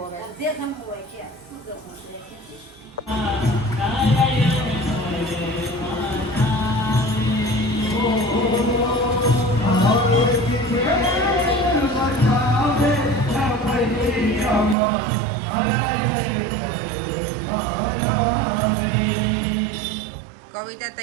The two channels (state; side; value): drops out; left; at 14.8 s